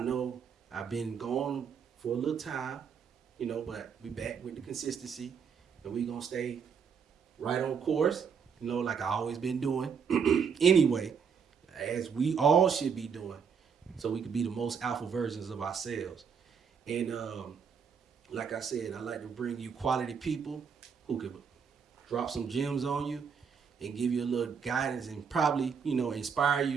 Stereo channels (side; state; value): left; quieter; 6.6 dB